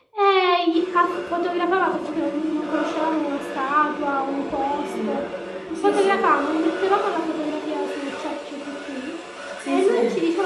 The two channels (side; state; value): both; identical; correlation 1.00